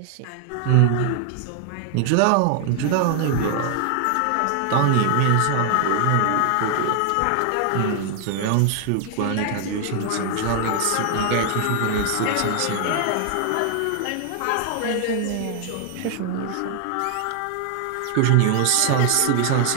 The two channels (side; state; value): both; different; correlation 0.00